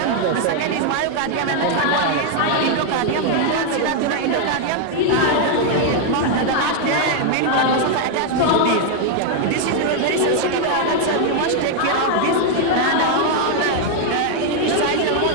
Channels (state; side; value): different; both; correlation 0.00